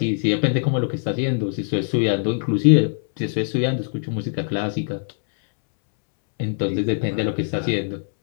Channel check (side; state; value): right; silent; 64 dB below the other